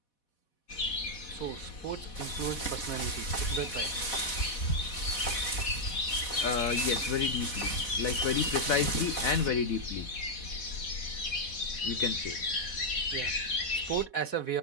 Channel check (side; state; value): right; late; 4.1 ms